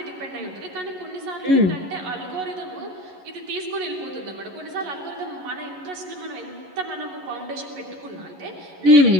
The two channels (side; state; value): left; late; 11 ms